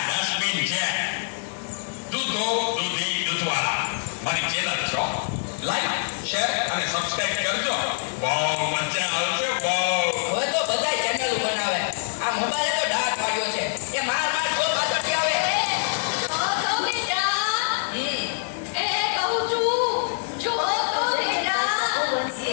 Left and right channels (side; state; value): right; silent; digital silence